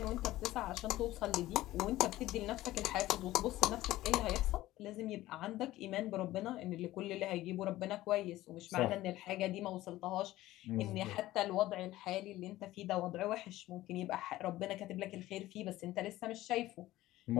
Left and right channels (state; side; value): quieter; right; 16.1 dB